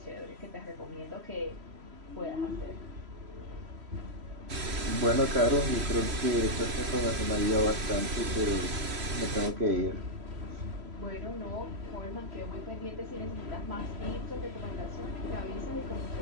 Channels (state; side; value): late; left; 3.0 ms